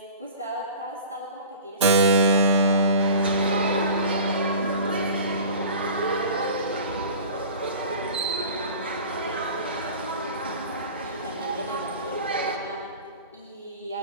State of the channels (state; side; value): inverted; both; correlation -0.41